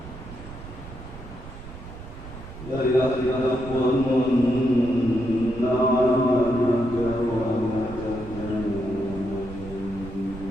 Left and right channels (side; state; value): right; noise; rumble, 13 dB below the sound